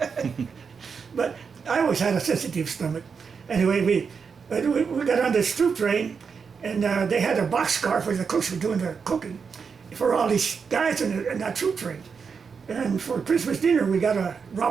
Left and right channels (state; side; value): quieter; left; 5.8 dB